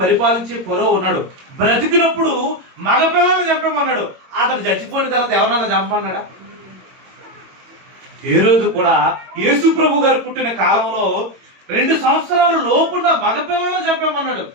పరిపాలించే ఫరో ఉన్నాడు, బ్రతికినప్పుడు మగపిల్లలను చంపమన్నాడు. అతను చచ్చిపోయిన తర్వాత ఎవరన్నా చంపమన్నాడా? ఏ రోజు కూడా యేసు ప్రభు గారు పుట్టిన కాలంలో 2 సంవత్సరాల లోపున్న మగపిల్లలను చంపమన్నాడు.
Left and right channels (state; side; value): late; left; 22 ms